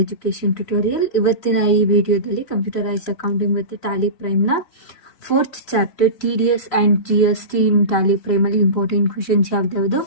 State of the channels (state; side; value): late; right; 3.0 ms